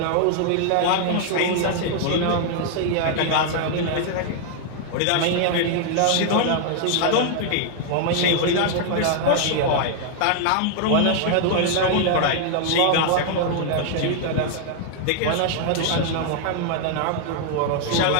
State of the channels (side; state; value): both; different; correlation 0.00